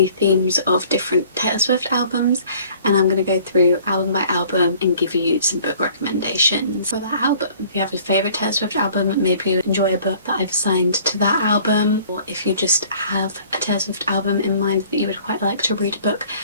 themes of different Taylor Swift albums, and I'm going to go through album by album and give you some book recommendations for that album. If you have a favourite Taylor Swift album, maybe you enjoy a book that I've assigned to that album, or if you just have a Taylor Swift album in mind that you would quite like to read a book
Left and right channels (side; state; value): both; inverted; correlation -0.53